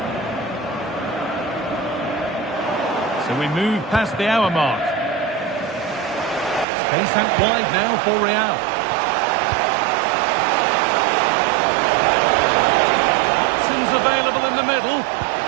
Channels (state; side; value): drops out; left; at 6.7 s